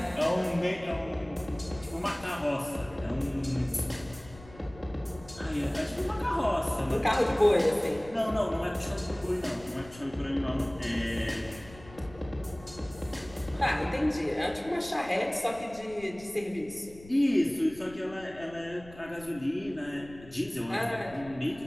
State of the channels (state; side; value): noise; left; rumble, 19 dB below the sound